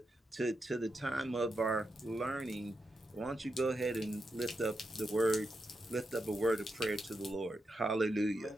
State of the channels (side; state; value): both; normal; correlation 0.86